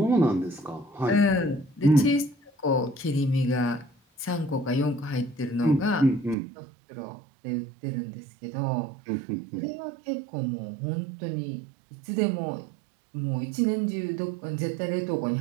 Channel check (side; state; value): left; drops out; at 6.4 s